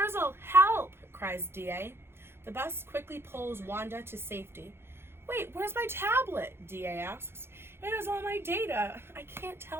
help, cries DA. The bus quickly pulls Wanda to safety. Wait, where's my tablet? DA asks. It has all my data. I can't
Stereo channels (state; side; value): late; left; 0.11 ms